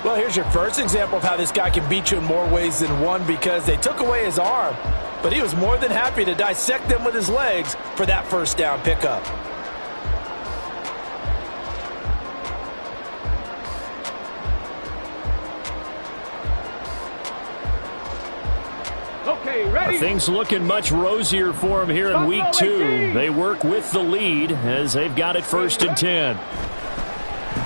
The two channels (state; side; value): inverted; both; correlation -1.00